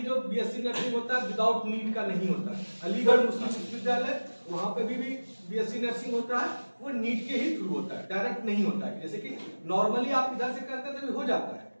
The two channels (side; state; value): both; inverted; correlation -1.00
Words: जो बीएससी नर्सिंग होता है विदाउट नीट का नहीं होता है। अलीगढ़ मुस्लिम विश्वविद्यालय, वहां पे भी बीएससी नर्सिंग होता है, वो नीट के ही थ्रू होता है, डायरेक्ट नहीं होता है। जैसे कि नॉर्मली आप इधर से करते हैं तो हो जाता है,